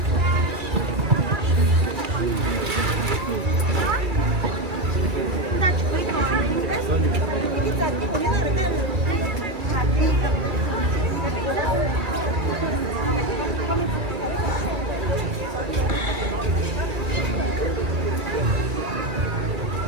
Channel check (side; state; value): left; late; 2.3 ms